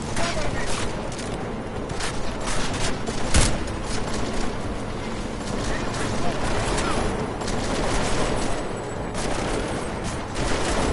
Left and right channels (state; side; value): identical; both; correlation 1.00